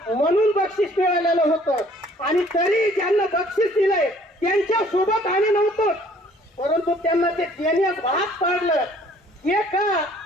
म्हणून बक्षीस मिळालेलं होतं. आणि तरी ज्यांना बक्षीस दिलंय त्यांच्या सोबत आम्ही नव्हतो, परंतु त्यांना ते देण्यास भाग पाडलं. हे का?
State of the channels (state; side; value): normal; both; correlation 0.57